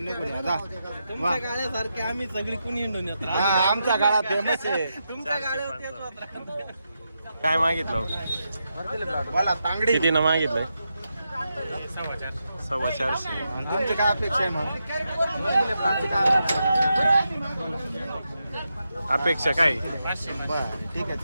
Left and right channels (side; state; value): both; inverted; correlation -0.86